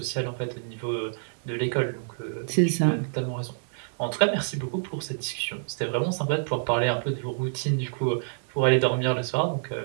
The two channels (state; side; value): silent; left; digital silence